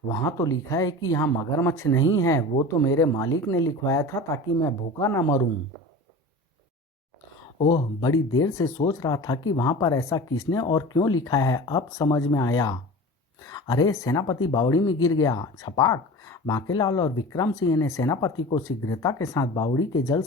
वहाँ तो लिखा है कि यहाँ मगरमच्छ नहीं है। वो तो मेरे मालिक ने लिखवाया था ताकि मैं भूखा ना मरूं। ओह, बड़ी देर से सोच रहा था कि वहां पर ऐसा किसने और क्यों लिखा है, अब समझ में आया। अरे, सेनापति बावड़ी में गिर गया। छपाक। बांकेलाल और विक्रम सिंह ने सेनापति को शीघ्रता के साथ बावड़ी के जल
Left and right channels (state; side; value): normal; both; correlation 0.35